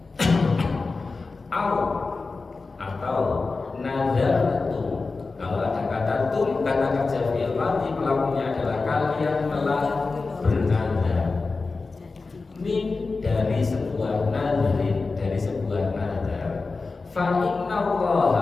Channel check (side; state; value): right; quieter; 4.0 dB